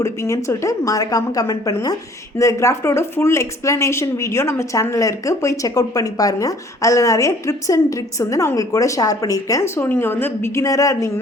கொடுப்பீங்கன்னு சொல்லிட்டு மறக்காமல் கமெண்ட் பண்ணுங்கள். இந்த கிராஃப்டோட ஃபுல் எக்ஸ்ப்ளனேஷன் வீடியோ நம்ம சேனலில் இருக்குது, போய் செக் அவுட் பண்ணி பாருங்கள். அதில் நிறைய ட்ரிப்ஸ் அண்ட் ட்ரிக்ஸ் வந்து நான் உங்களுக்கு கூட ஷேர் பண்ணியிருக்கேன். ஸோ நீங்கள் வந்து பிகினராக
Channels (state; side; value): normal; both; correlation 0.55